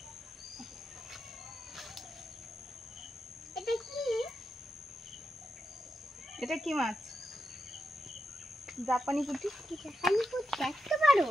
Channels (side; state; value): both; normal; correlation 0.87